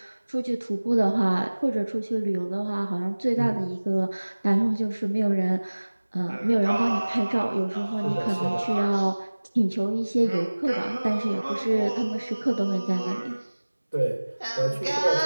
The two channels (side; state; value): both; inverted; correlation -1.00